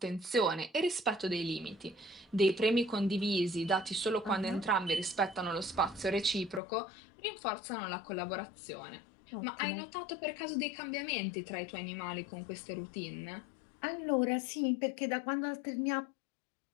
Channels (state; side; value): drops out; right; at 6.6 s